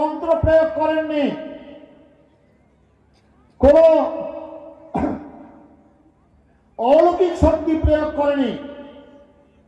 প্রয়োগ করেননি, কোন অলৌকিক শক্তি প্রয়োগ করেনি,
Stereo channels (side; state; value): both; identical; correlation 1.00